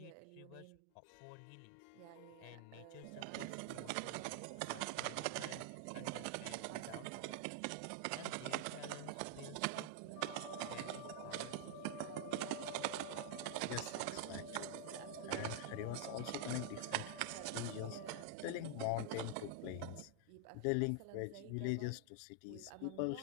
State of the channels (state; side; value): different; both; correlation -0.01